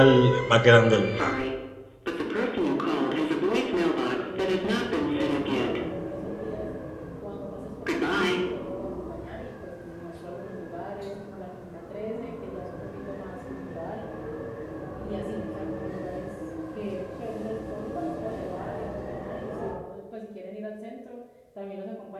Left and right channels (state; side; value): identical; both; correlation 1.00